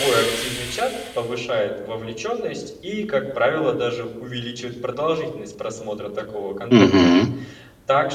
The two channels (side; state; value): both; identical; correlation 1.00